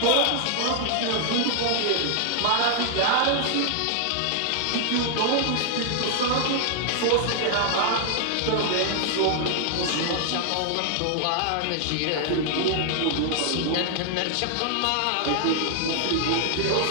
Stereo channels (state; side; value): different; both; correlation 0.00